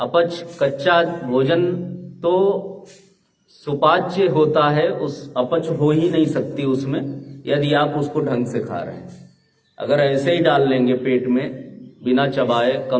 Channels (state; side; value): identical; both; correlation 1.00